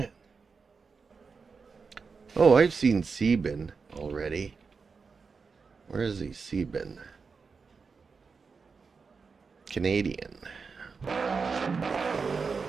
Oh, I've seen Sebin already. Where is he? Sebin. Canadian.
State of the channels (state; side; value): quieter; left; 5.0 dB